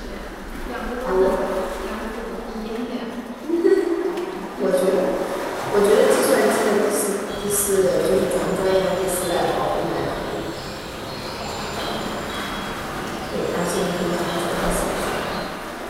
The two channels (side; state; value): both; identical; correlation 1.00